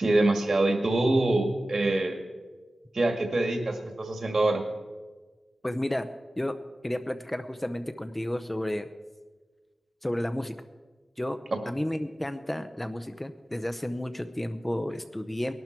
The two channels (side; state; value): both; normal; correlation 0.95